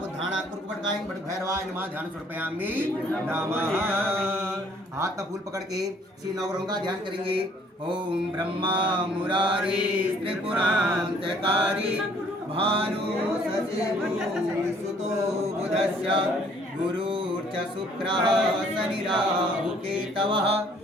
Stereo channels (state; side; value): normal; both; correlation 0.60